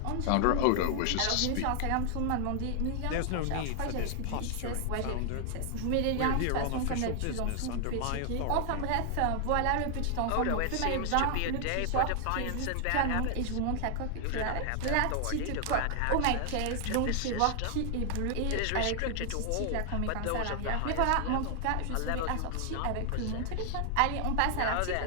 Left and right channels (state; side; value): different; both; correlation 0.00